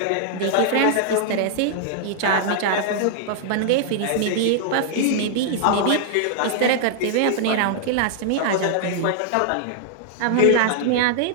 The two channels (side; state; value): both; different; correlation -0.01